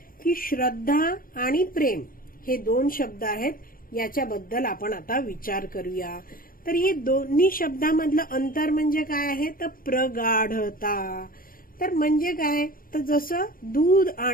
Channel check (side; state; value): right; late; 0.41 ms